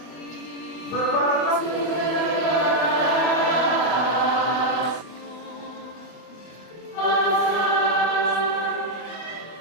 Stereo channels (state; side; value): late; right; 24 ms